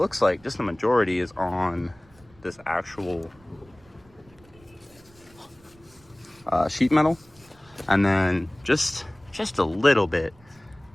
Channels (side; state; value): right; noise; rumble, 28 dB below the sound